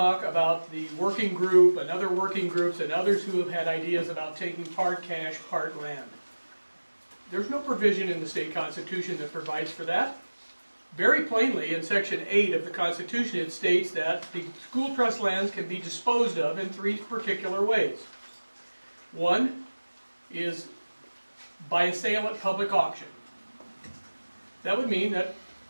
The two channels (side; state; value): both; inverted; correlation -1.00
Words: about the working group and other working groups and others who have had ideas about taking part cash, part land. There's no provision in the state constitution that provides for that. Very plainly, in Section 8 of the Constitution, it states that the school trust lands can be disposed of in 3 particular ways. One is by a sale at public auction. That would mean that